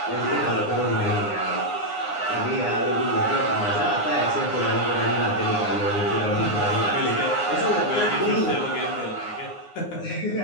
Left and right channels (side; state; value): right; late; 9.7 ms